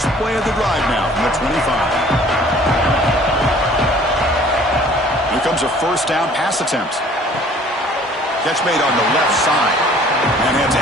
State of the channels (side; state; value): both; normal; correlation 0.53